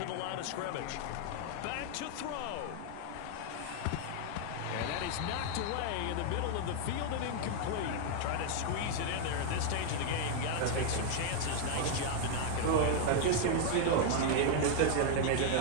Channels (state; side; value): different; both; correlation 0.00